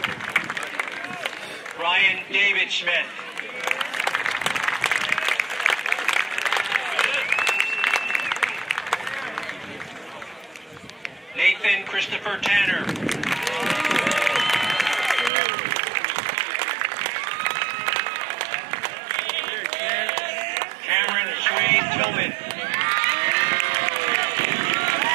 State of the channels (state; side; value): drops out; left; at 15.3 s